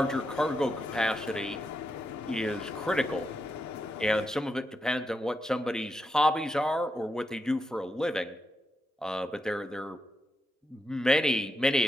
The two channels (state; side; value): normal; both; correlation 0.85